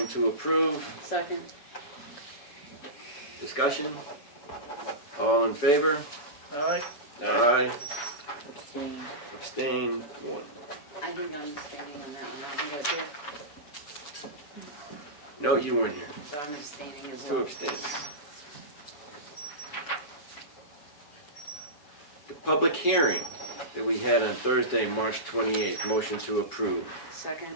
to approve. Second? Discussion? All in favor? All right, Aye. Abstain. Abstain, 1. I think I'm abstaining on that one. I think I was here, No, you weren't here. so I'm abstaining as 2 well. abstain. The public hearing that we had on Thursday, March 28th. Motion to approve. Second?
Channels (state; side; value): late; right; 7.0 ms